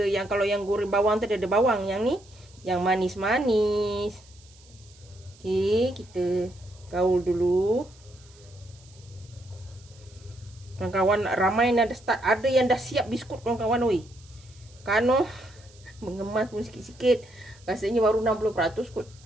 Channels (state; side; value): noise; right; hiss, 26 dB below the sound